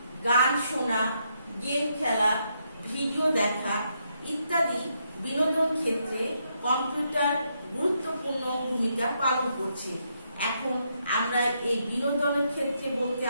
গান শোনা, গেম খেলা, ভিডিও দেখা ইত্যাদি বিনোদন ক্ষেত্রে কম্পিউটার গুরুত্বপূর্ণ ভূমিকা পালন করছে। এখন আমরা এই বিনোদনের ক্ষেত্রে বলতে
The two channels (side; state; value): both; inverted; correlation -0.78